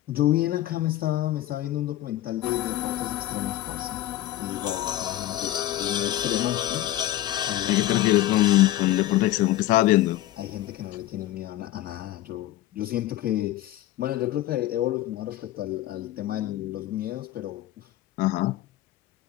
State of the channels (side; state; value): right; quieter; 14.6 dB